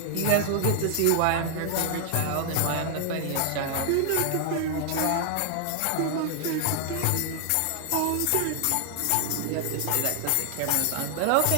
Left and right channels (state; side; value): different; both; correlation 0.00